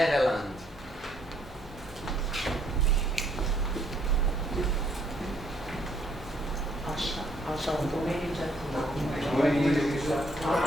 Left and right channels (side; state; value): both; normal; correlation 0.68